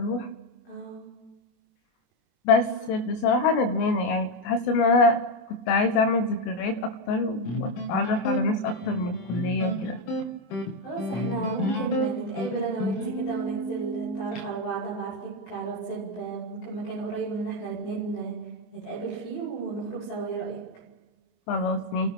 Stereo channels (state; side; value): late; right; 23 ms